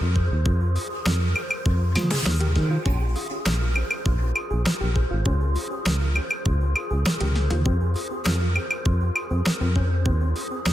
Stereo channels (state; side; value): normal; both; correlation 0.90